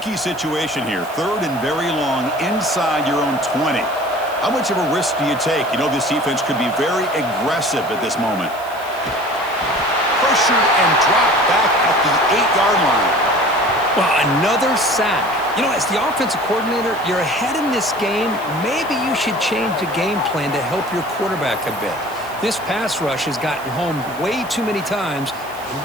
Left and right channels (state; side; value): noise; right; hiss, 20 dB below the sound